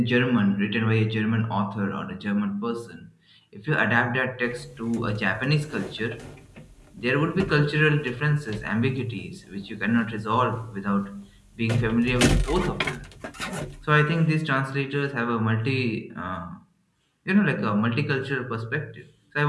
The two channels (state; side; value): identical; both; correlation 1.00